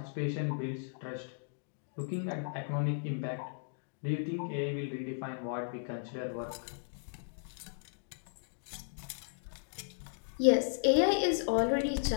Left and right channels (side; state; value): right; silent; digital silence